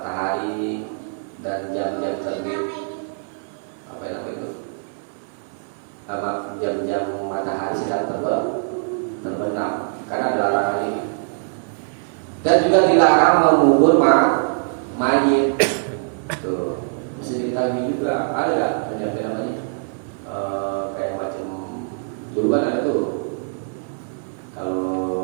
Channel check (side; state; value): left; silent; 64 dB below the other